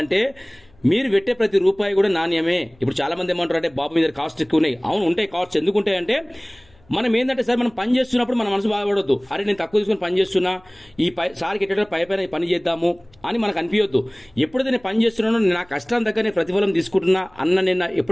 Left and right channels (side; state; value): left; noise; hum, 30 dB below the sound